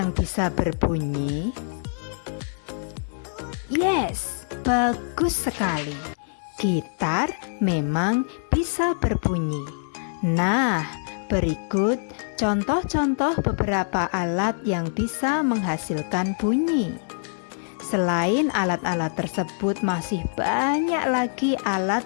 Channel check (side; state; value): right; silent; digital silence